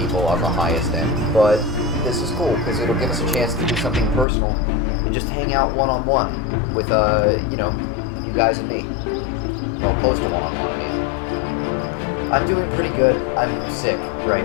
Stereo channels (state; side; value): drops out; right; at 4.2 s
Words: on the highest end, but this is cool because it'll give us a chance to do something personal and just hang out one-on-one with, you know, you guys and me. Well, close to one-on-one, I mean. I'm doing pretty good. I'm sick